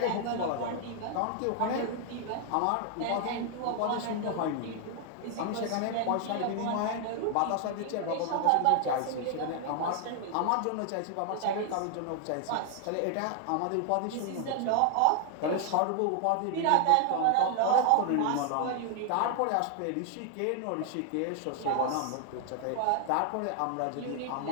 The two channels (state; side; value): different; both; correlation 0.00